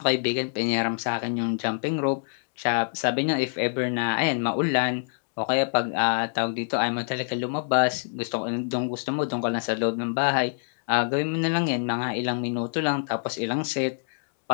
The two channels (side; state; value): right; silent; digital silence